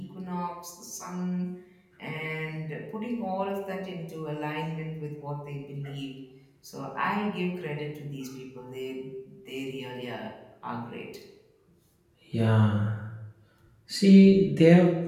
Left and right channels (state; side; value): identical; both; correlation 1.00